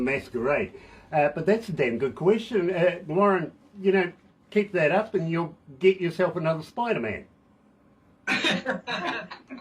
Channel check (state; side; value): identical; both; correlation 1.00